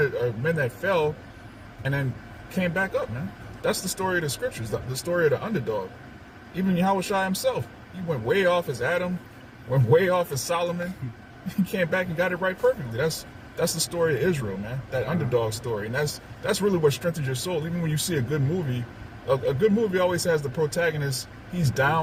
men that fell and then came back up, man. That's the story of the scriptures, the story of the underdog. Even Yahushua himself, he went way off as Adam, went way off as Solomon. He came back and got it right perfectly. That's the story of Israel, man. That underdog story. And that's really what strengthens your soul. Even when you see a good movie, a good movie always has the protagonist, he's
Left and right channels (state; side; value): identical; both; correlation 1.00